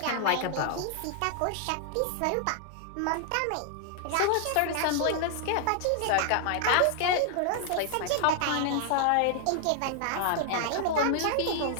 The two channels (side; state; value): both; different; correlation 0.00